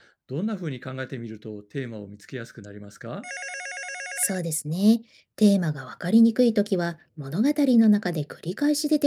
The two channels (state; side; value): identical; both; correlation 1.00